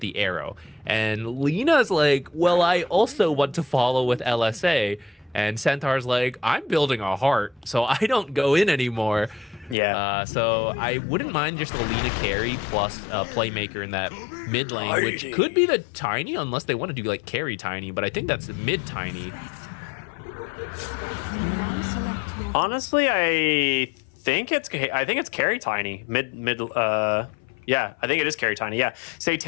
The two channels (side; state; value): right; drops out; at 9.8 s